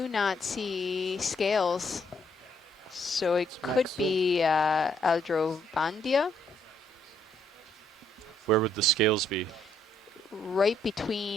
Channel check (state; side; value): normal; both; correlation 0.70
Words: not see scales. So it could be Eldrovandia, Where would the scales be? right